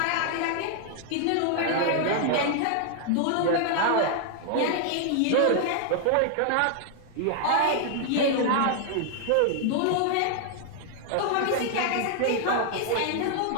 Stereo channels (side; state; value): both; different; correlation 0.00